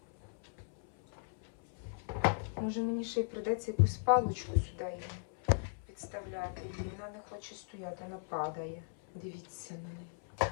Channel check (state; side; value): silent; right; 53 dB below the other